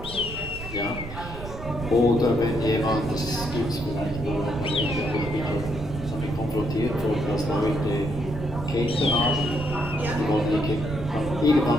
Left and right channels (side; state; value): right; noise; rumble, 11 dB below the sound